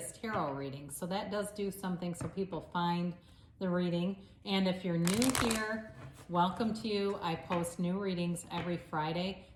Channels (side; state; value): both; identical; correlation 1.00